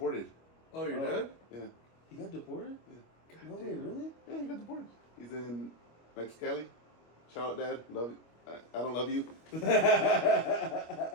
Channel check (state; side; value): late; right; 25 ms